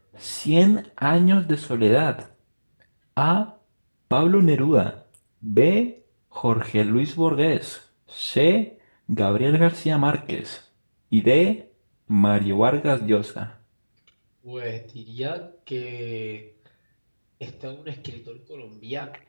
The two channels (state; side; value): inverted; both; correlation -1.00